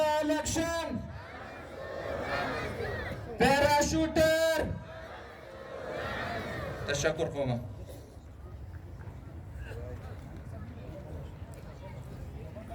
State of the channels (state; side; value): identical; both; correlation 1.00